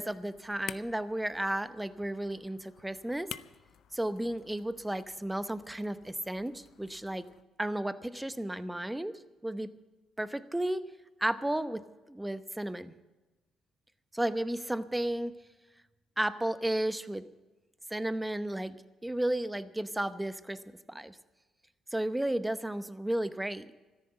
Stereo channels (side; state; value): both; normal; correlation 0.98